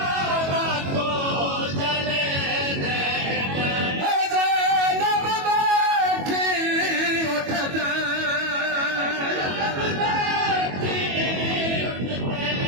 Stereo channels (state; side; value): late; left; 22 ms